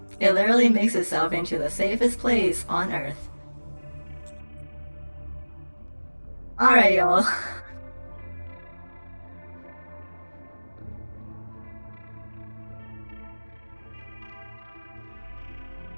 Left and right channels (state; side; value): inverted; both; correlation -1.00